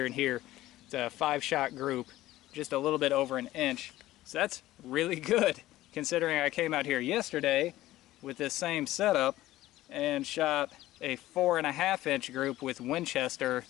and here. It's a 5-shot group, just a little bit over an inch. So that's really good, considering I came out here yesterday with this same setup and shot a 4.5-inch group with Winchester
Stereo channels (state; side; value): quieter; right; 15.7 dB